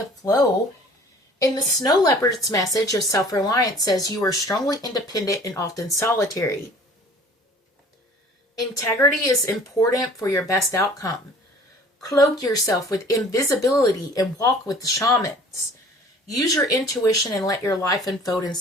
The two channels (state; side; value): normal; both; correlation 0.49